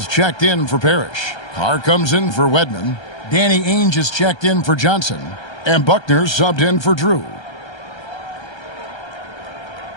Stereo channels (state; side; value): late; right; 1.3 ms